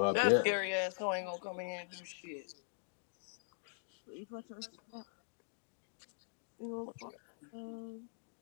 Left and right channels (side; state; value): right; silent; digital silence